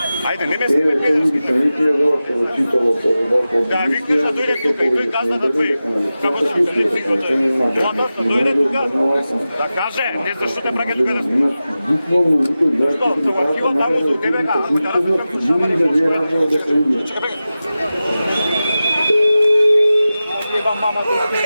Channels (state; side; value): inverted; both; correlation -0.94